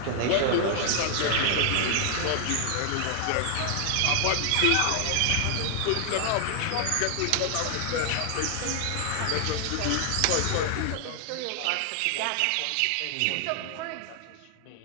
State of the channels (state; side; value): different; both; correlation 0.00